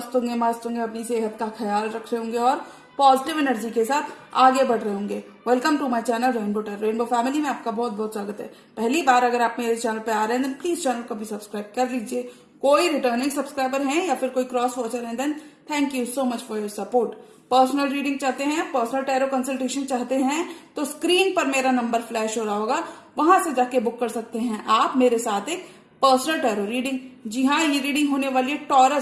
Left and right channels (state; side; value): identical; both; correlation 1.00